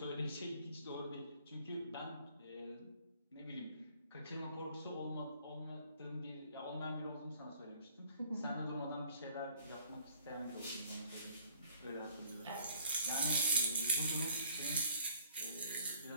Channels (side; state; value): both; inverted; correlation -0.57